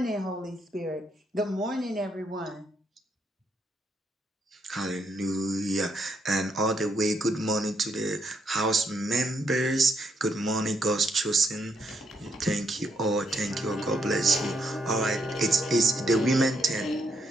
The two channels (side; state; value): both; normal; correlation 0.75